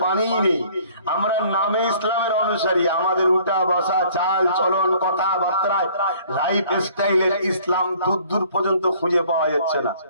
পানিই নেই। আমরা নামে ইসলামের অনুসারী, আমাদের উঠা বসা, চাল চলন, কথাবার্তায়, লাইফ স্টাইলের ইসলাম দূর দূর পর্যন্ত খুঁজে পাওয়া যাচ্ছে না।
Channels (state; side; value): inverted; both; correlation -0.55